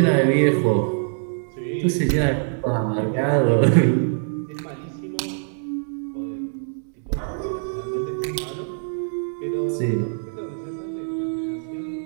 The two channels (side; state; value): left; silent; digital silence